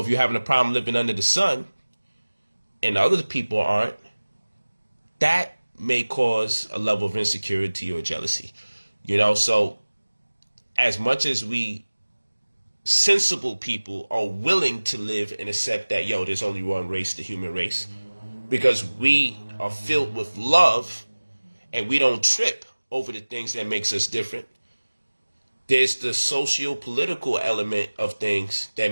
you're having a problem living under the sun and other people aren't, that may cause a level of insecurity or jealousy. So as much as we sensible people are willing to live and accept that, there's only one race, the human race, because we are filled with love and we don't trip over the things that makes us different. There's the socio-political element of things that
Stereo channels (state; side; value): inverted; both; correlation -1.00